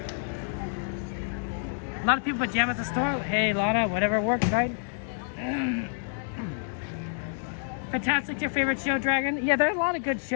A lot of people pajama at the store. Hey, Lana, whatever works, right? Fantastic, your favorite show, Dragon? Yeah, there's a lot of good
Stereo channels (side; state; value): right; silent; digital silence